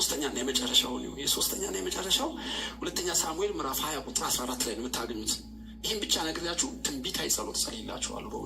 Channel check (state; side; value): identical; both; correlation 1.00